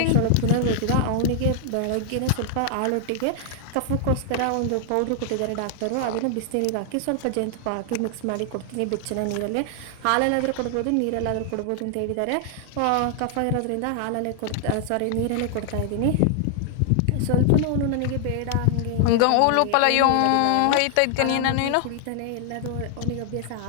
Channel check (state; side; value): different; both; correlation 0.00